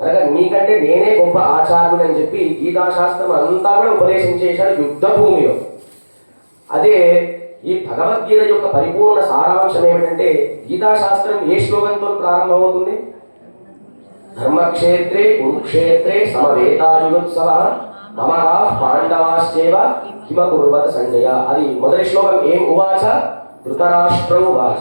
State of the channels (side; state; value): both; inverted; correlation -1.00